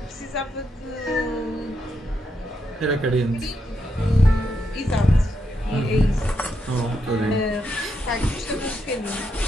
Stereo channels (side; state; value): both; normal; correlation 0.81